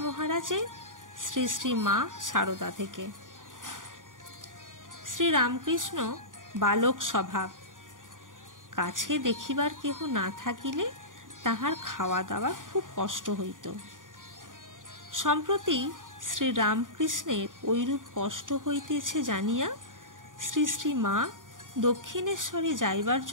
মহারাজের শ্রী শ্রী মা সারদা থেকে। শ্রীরামকৃষ্ণ বালক স্বভাব, কাছে দেখিবার কেহ না থাকিলে তাহার খাওয়া দাওয়ার খুব কষ্ট হইত। সম্প্রতি শ্রীরামকৃষ্ণের ঐরূপ কষ্ট হইতেছে জানিয়া শ্রী শ্রী মা দক্ষিণেশ্বরে যাইবার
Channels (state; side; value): late; left; 0.88 ms